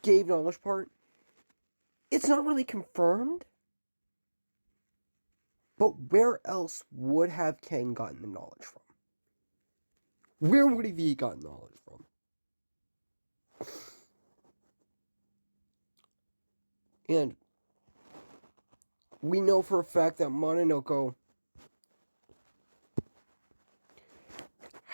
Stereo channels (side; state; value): both; inverted; correlation -1.00